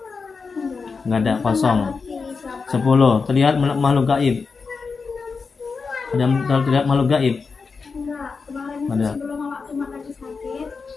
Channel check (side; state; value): right; quieter; 4.9 dB